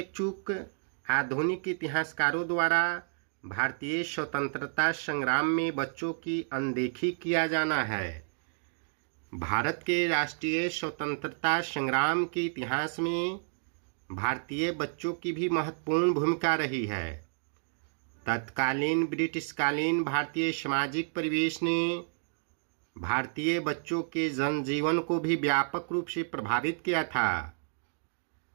चूक आधुनिक इतिहासकारों द्वारा भारतीय स्वतंत्रता संग्राम में बच्चों की अनदेखी किया जाना है। भारत के राष्ट्रीय स्वतंत्रता संग्राम के इतिहास में भारतीय बच्चों की भी महत्वपूर्ण भूमिका रही है। तत्कालीन ब्रिटिशकालीन भारतीय सामाजिक परिवेश ने भारतीय बच्चों के जनजीवन को भी व्यापक रूप से प्रभावित किया था।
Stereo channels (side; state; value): left; silent; digital silence